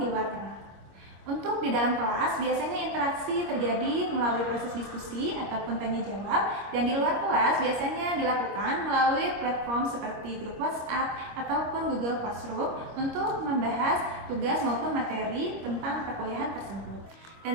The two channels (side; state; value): left; late; 26 ms